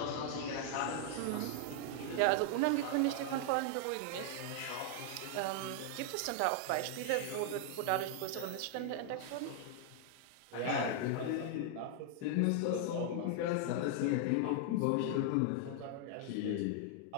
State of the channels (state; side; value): different; both; correlation 0.00